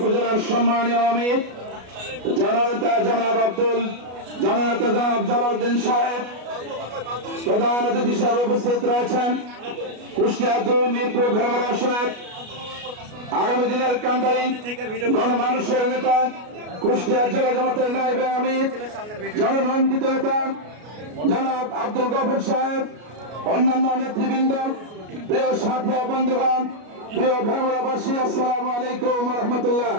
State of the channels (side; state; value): left; late; 33 ms